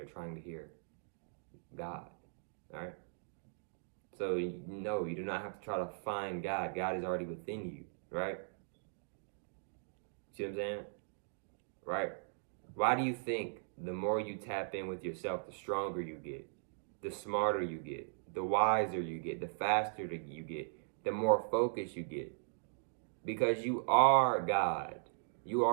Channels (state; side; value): silent; left; digital silence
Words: trying to hear God, all right? So no, you do not have to try to find God. God is already within you, right? See what I'm saying? Right? Why do you think the more you tap in with yourself, the stronger you get, the smarter you get, the wiser you get, the faster you get, the more focused you get? Because you are God. You